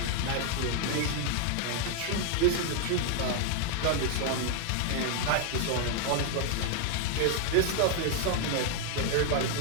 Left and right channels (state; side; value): different; both; correlation 0.00